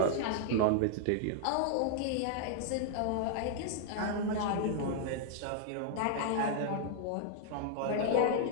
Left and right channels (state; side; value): different; both; correlation -0.01